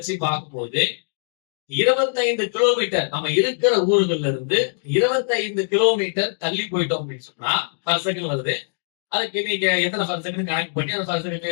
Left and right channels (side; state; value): right; silent; digital silence